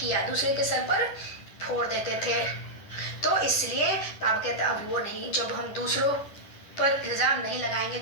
दूसरे के सर पर फोड़ देते थे। तो इसलिए बाबा कहते अब वो नहीं, जब हम दूसरों पर इल्जाम नहीं लगाएंगे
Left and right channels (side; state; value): right; late; 10 ms